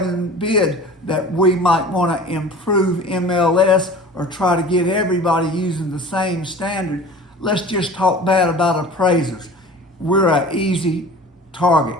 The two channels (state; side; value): normal; both; correlation 0.41